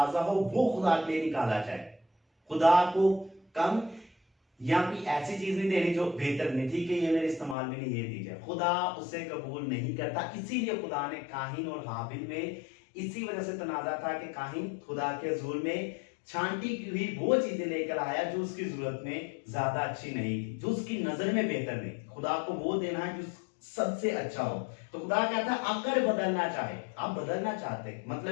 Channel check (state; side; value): drops out; right; at 7.6 s